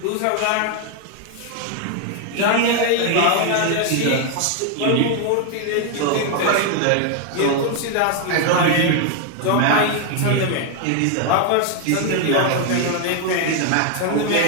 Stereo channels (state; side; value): different; both; correlation 0.00